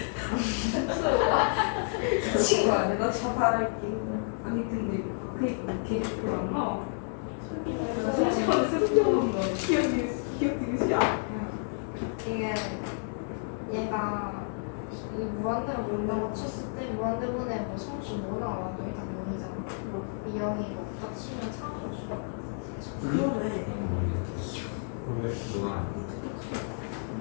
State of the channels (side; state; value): right; silent; digital silence